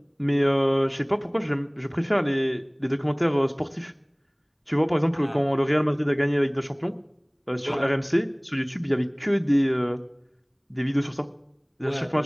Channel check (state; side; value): identical; both; correlation 1.00